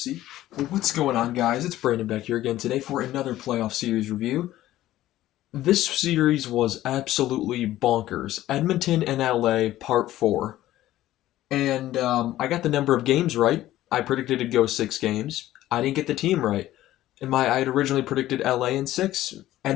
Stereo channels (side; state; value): right; quieter; 14.5 dB